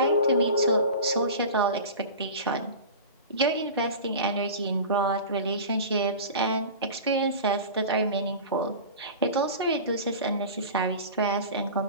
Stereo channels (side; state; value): both; inverted; correlation -0.34